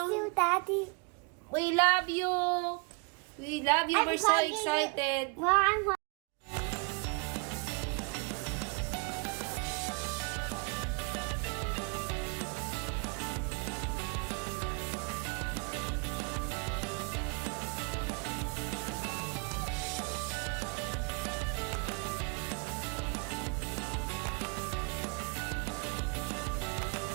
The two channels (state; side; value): quieter; left; 33.7 dB